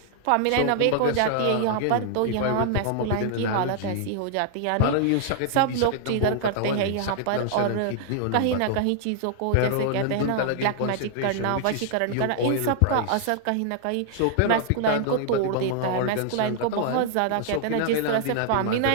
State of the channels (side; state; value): both; different; correlation -0.01